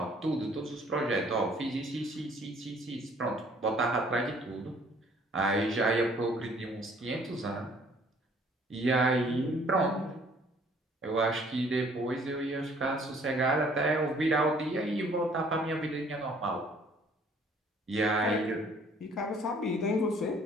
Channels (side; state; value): both; normal; correlation 0.58